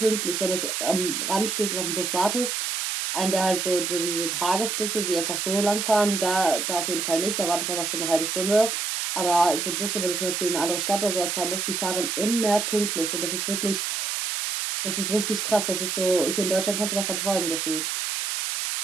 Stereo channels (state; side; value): noise; right; hiss, 1 dB below the sound